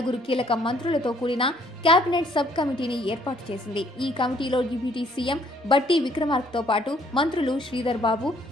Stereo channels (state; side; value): normal; both; correlation 0.64